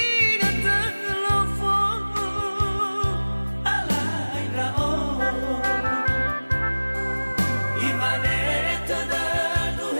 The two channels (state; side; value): inverted; both; correlation -1.00